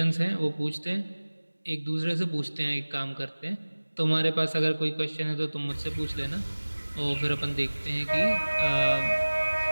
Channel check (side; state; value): both; inverted; correlation -1.00